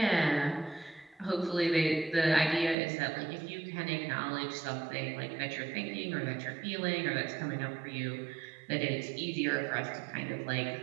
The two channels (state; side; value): drops out; left; at 2.8 s